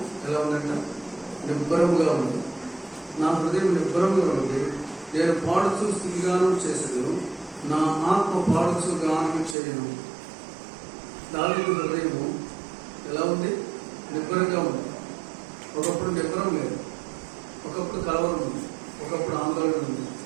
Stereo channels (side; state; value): left; drops out; at 9.6 s